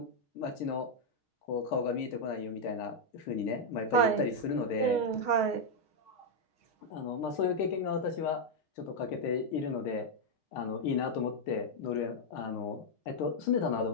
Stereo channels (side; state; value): right; late; 6.4 ms